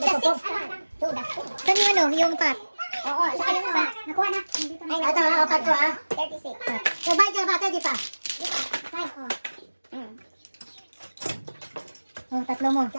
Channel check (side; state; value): both; inverted; correlation -1.00